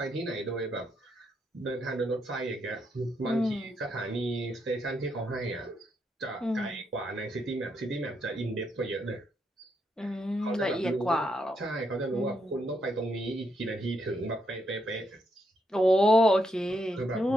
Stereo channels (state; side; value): normal; both; correlation 0.78